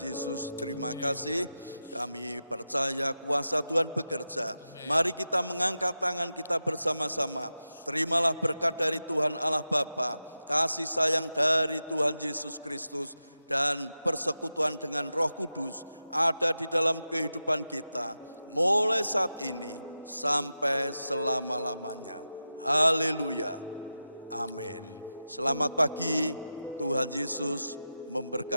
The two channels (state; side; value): inverted; both; correlation -0.91